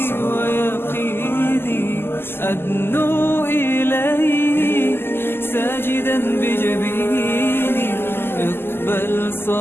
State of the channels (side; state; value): right; late; 0.11 ms